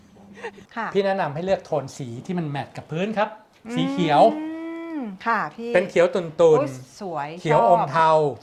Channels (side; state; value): both; identical; correlation 1.00